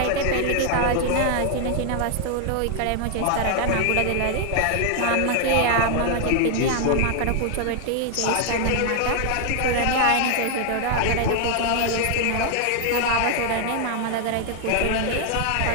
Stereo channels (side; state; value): both; different; correlation 0.00